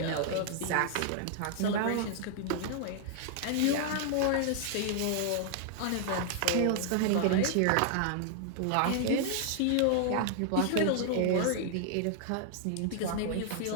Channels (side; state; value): both; different; correlation 0.00